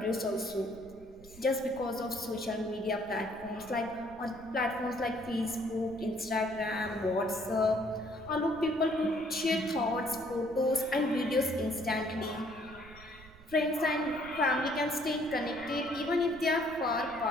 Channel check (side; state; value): right; noise; rumble, 21 dB below the sound